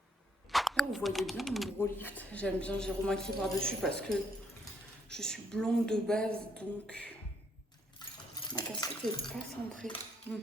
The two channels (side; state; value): both; normal; correlation 0.71